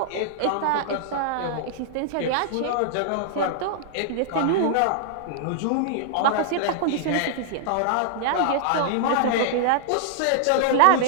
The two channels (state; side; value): different; both; correlation -0.01